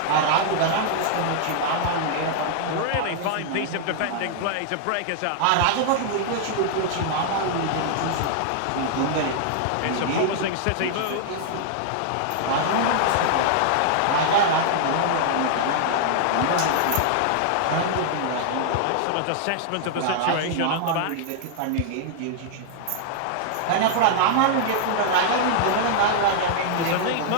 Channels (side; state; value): both; different; correlation -0.01